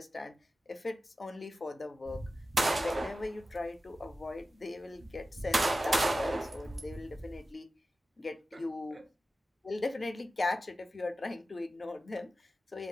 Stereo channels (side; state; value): both; normal; correlation 0.94